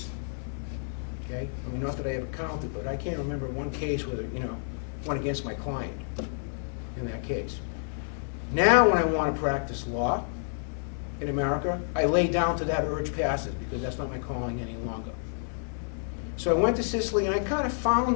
Okay? I mean, not that I ever counted, but I can't remember one case where, went against my client in that case. Now, when I want to practice law in America, I lay down to that urge passive because that's not my calling any longer. So I went to Sicily and I kind of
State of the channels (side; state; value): right; silent; 58 dB below the other